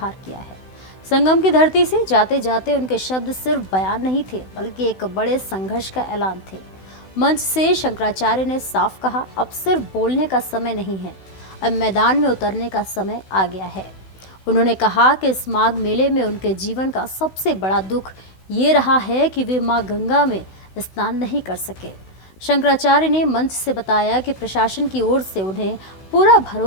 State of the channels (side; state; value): right; late; 16 ms